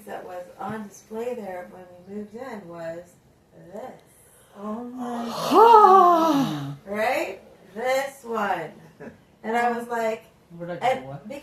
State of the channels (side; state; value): both; identical; correlation 1.00